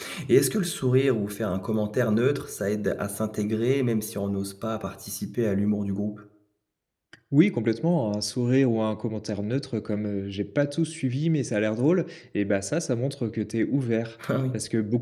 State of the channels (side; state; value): both; identical; correlation 1.00